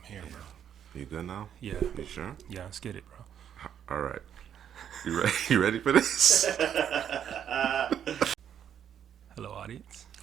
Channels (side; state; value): left; quieter; 9.1 dB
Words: here, bro. You good now? Yeah. You sure? Yeah, let's get it, bro. All right. You ready? You ready for this? Hello, audience.